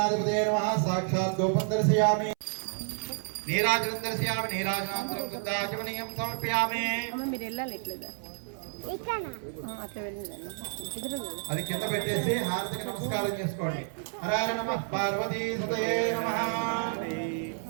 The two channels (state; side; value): silent; left; 58 dB below the other